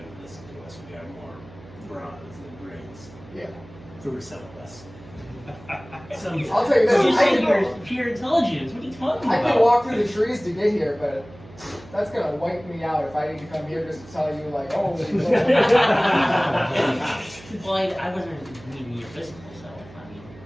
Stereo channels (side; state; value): right; noise; hum, 20 dB below the sound